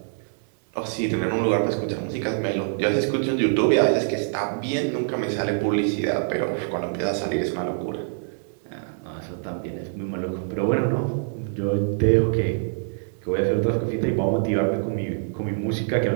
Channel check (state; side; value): silent; left; 62 dB below the other